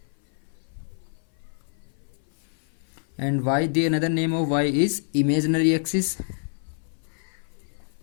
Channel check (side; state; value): right; silent; 57 dB below the other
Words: And y, the another name of y is imaginary axis.